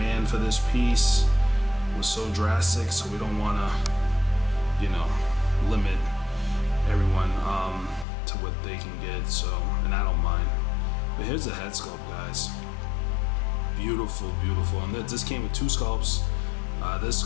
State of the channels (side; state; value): right; drops out; at 8.1 s